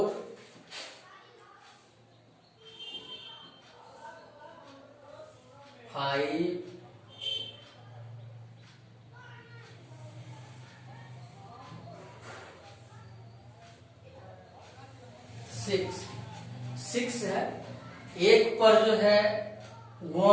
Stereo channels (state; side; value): identical; both; correlation 1.00